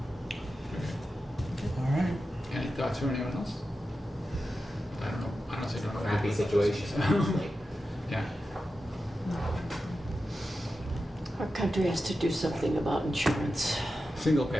All right. Any thoughts from anyone else? I don't know. Honestly, don't know. Crappy situation. Yeah. Our country has to do something about insurance. Single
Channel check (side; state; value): both; normal; correlation 0.91